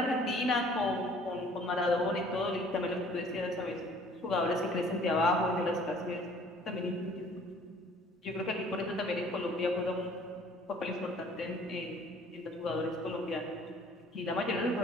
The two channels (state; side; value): normal; both; correlation 0.54